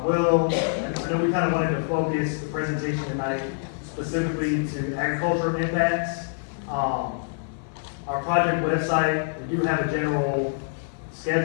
know we kind of wanted to focus the presentation tonight specifically to agricultural impacts. Our project website, we do have a general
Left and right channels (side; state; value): right; silent; digital silence